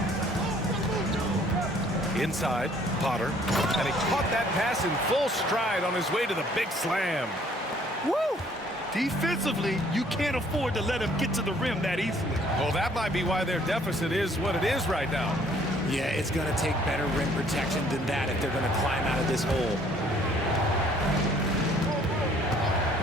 Inside, Potter. And he caught that pass in full stride on his way to the big slam. Woo! Defensively, you can't afford to let him get to the rim that easily. Well, that might be why their deficit is what it is right now. Yeah, it's going to take better rim protection than that if they're going to climb out of this hole.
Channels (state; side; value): normal; both; correlation 0.60